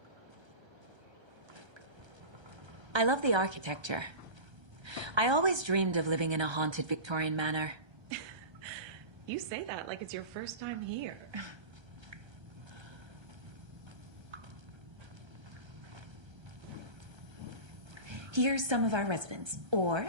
I love the architecture. I always dreamed of living in a haunted Victorian manor. You say that like it's your first time here. Here's some of our residents, or,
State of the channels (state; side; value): late; left; 1.3 ms